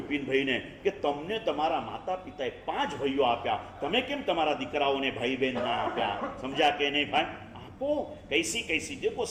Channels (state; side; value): identical; both; correlation 1.00